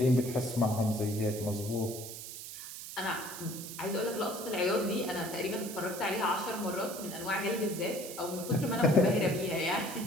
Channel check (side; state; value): right; noise; hiss, 10 dB below the sound